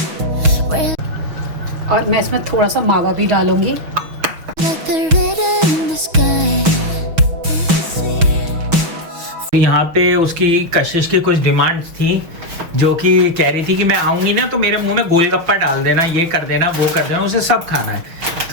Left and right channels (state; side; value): late; left; 6.3 ms